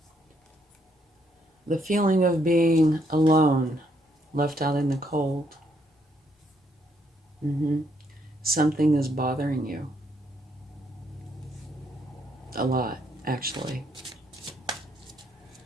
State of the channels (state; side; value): normal; both; correlation 0.73